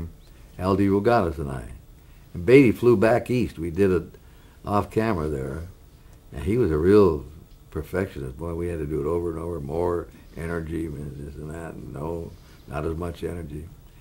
L.D. Rogatis and I. And Beatty flew back east. We did it off camera there. And he was a real perfectionist. Boy, we had to do it over and over, more energy, and this and that. And no, not as much energy.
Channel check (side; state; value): both; identical; correlation 1.00